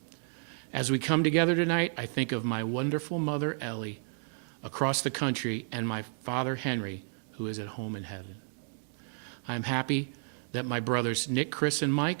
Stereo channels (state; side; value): silent; left; 57 dB below the other